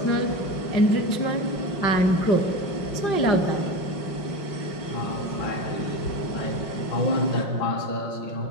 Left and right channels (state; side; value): late; right; 5.6 ms